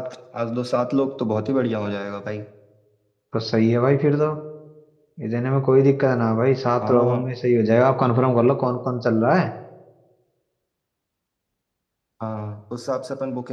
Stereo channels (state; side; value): identical; both; correlation 1.00